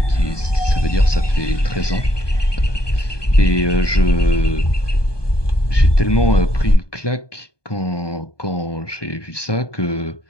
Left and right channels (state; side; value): late; right; 1.2 ms